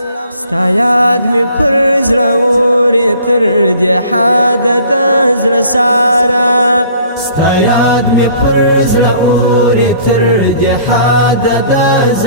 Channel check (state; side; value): inverted; both; correlation -0.53